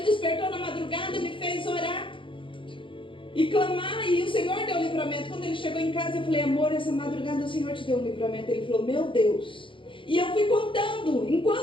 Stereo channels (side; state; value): right; late; 0.25 ms